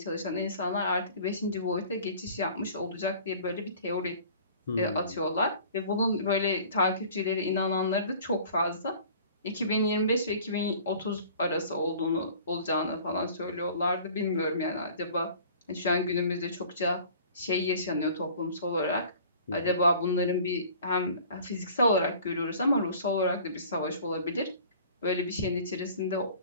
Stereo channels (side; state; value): both; inverted; correlation -0.48